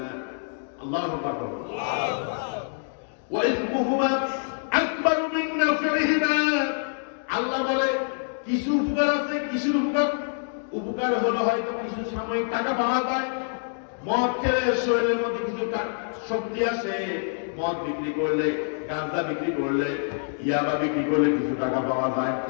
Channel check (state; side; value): silent; right; digital silence